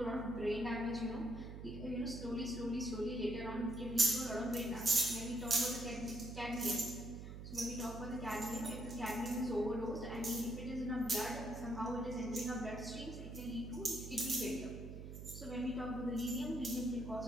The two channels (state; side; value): noise; right; hum, 9 dB below the sound